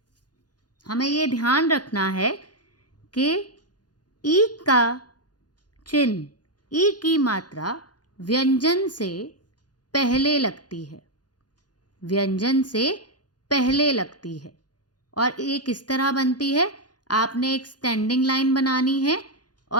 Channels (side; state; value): right; late; 0.69 ms